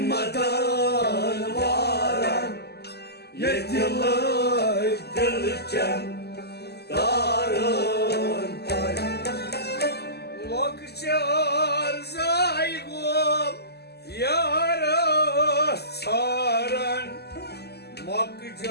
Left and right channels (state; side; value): late; right; 0.47 ms